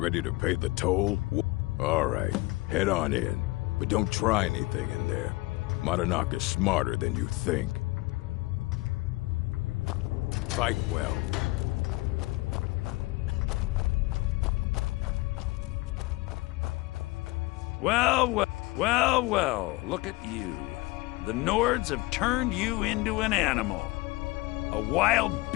to pay the toll? All right, head on in. But don't try anything in there. Madanak is smarter than you think. Fight well. Well, look at you. The Nords have turned you into an animal. A wild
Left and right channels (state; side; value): quieter; right; 21.7 dB